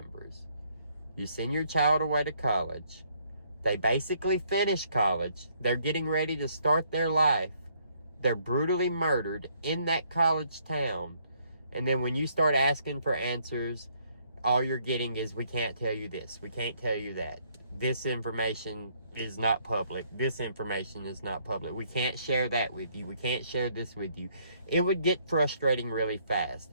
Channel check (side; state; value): both; inverted; correlation -0.68